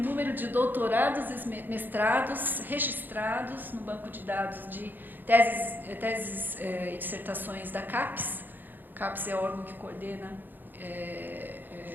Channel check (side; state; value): left; late; 0.090 ms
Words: de doutorados e mestrados registrados no banco de dados de teses e dissertações da CAPES. O CAPES é o órgão que coordena